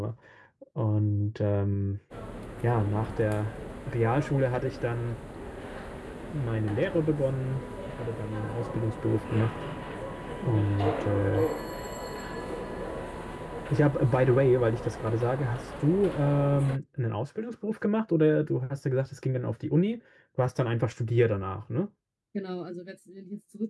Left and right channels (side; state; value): both; identical; correlation 1.00